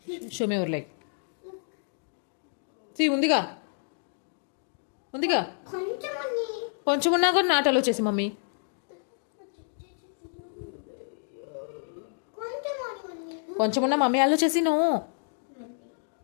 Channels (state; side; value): silent; right; digital silence